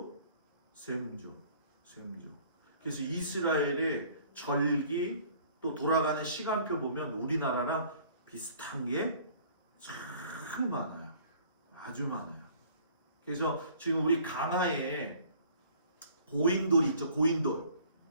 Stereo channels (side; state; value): both; inverted; correlation -0.54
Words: 셈족. 그래서 이스라엘의 절기 또 돌아가는 시간표 보면 우리나라랑 비슷한 게 참 많아요. 아주 많아요. 그래서 지금 우리 강화에 고인돌이 있죠.